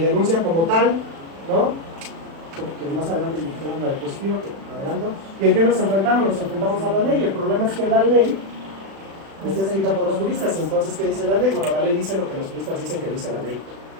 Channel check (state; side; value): late; left; 36 ms